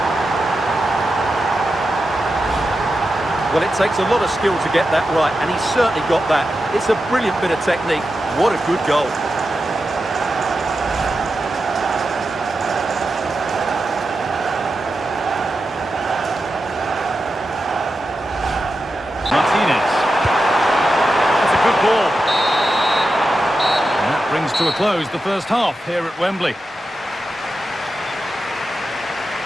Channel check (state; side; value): normal; both; correlation 0.90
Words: Well, it takes a lot of skill to get that right, and he's certainly got that. It's a brilliant bit of technique. What a good goal. Martinez. That's a good ball. And that brings to a close the first half here at Wembley.